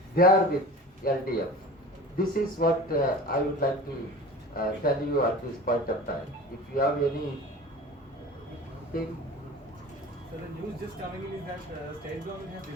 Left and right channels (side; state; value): both; normal; correlation 0.37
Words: they are with LDF. This is what I would like to tell you at this point of time. If you have any thing. So the news just coming in is that state government has